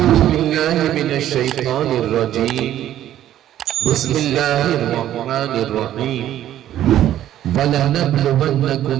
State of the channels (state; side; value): quieter; left; 12.2 dB